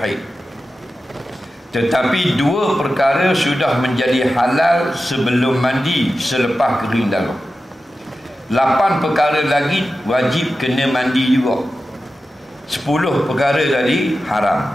tetapi 2 perkara sudah menjadi halal sebelum mandi selepas kering darah. 8 perkara lagi wajib kena mandi juga. 10 perkara tadi haram.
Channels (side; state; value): both; normal; correlation 0.93